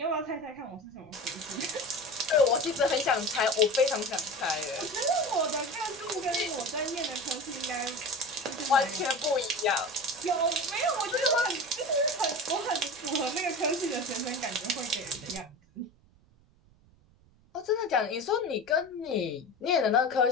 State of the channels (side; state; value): right; noise; rumble, 29 dB below the sound